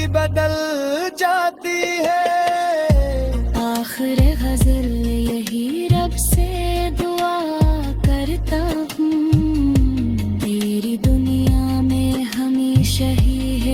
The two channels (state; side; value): identical; both; correlation 1.00